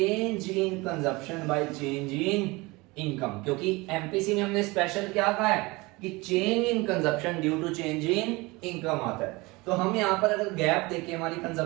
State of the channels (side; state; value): left; quieter; 23.5 dB